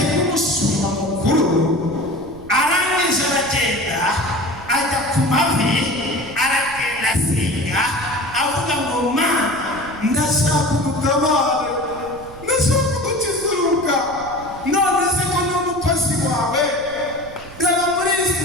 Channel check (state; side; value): noise; right; rumble, 18 dB below the sound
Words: nk'umushumba mukuru arangije aragenda ajya ku mavi, aragenda asenga avuga ngo Mana, ndashaka udutabare, ndashaka udukizuruka, none se ko n'umukozi wawe reba muri